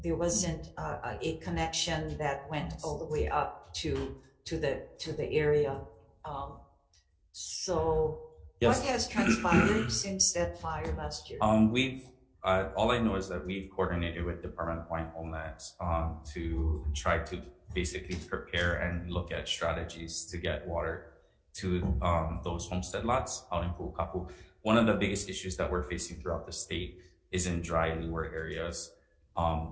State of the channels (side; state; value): both; identical; correlation 1.00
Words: wasn't a connection that went all the way up to the area. So Yes. what has transpired since that fire last year? We've all I know is that we've coordinated with Department of Hawaiian Homelands to try to basically prepare and look at strategies to get water to those homestead lots out in Pu'ukapu. One of the biggest issues that we're facing throughout the state is in dry leeward areas.